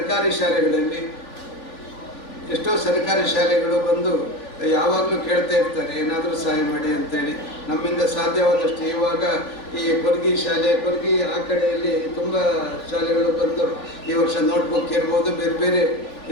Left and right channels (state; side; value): late; right; 3.4 ms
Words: ಶಾಲೆಗಳಲ್ಲಿ ಎಷ್ಟೋ ಸರ್ಕಾರಿ ಶಾಲೆಗಳು ಬಂದು ಯಾವಾಗಲೂ ಕೇಳ್ತಾ ಇರ್ತಾರೆ ಏನಾದರೂ ಸಹಾಯ ಮಾಡಿ ಅಂತೇಳಿ. ನಮ್ಮಿಂದ ಸಾಧ್ಯವಾದಷ್ಟು ಇವಾಗ ಈ ಕೊರ್ಗಿ ಆ ಕಡೆಯಲ್ಲಿ ತುಂಬ ಶಾಲೆಗಳು ಬಂದು ಈ ವರ್ಷ ನೋಟ್ಬುಕ್ ಇರ್ಬೋದು, ಬೇರೆ ಬೇರೆ